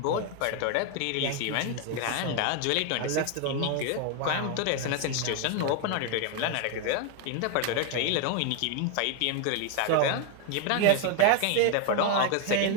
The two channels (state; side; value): different; both; correlation 0.01